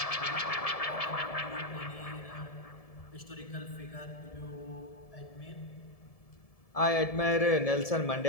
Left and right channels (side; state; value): right; late; 1.7 ms